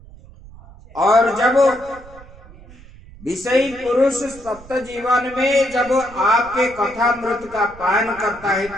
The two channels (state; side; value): noise; right; rumble, 20 dB below the sound